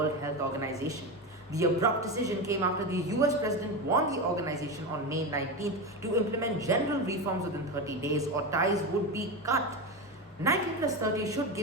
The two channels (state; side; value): normal; both; correlation 0.18